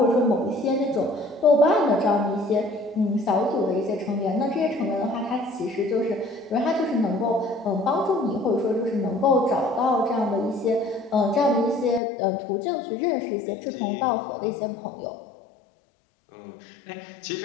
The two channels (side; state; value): right; drops out; at 12.0 s